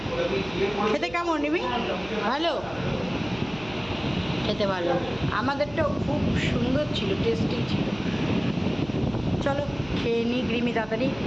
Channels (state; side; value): noise; right; hum, 18 dB below the sound